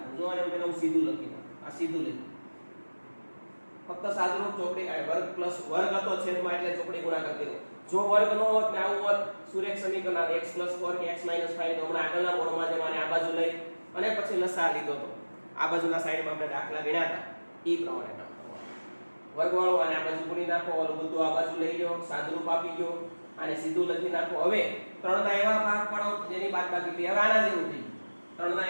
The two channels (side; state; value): both; inverted; correlation -1.00